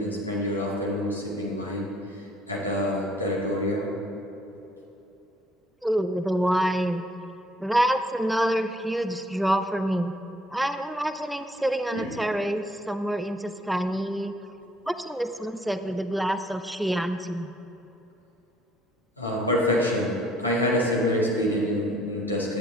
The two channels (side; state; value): both; normal; correlation 0.62